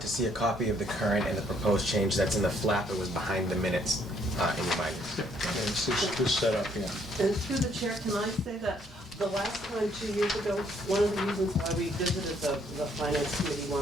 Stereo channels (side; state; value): both; normal; correlation 0.67